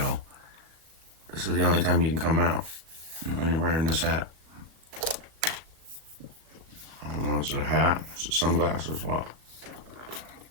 this is the only time you can come out when you're wearing this hat. I don't know, is it a hat? Is it sunglasses? What?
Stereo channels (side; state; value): left; late; 37 ms